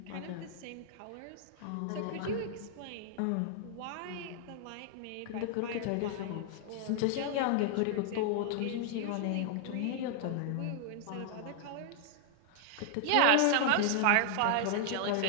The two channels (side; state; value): both; different; correlation -0.01